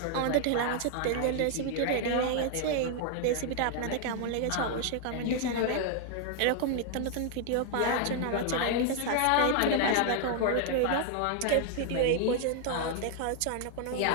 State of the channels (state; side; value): different; both; correlation 0.00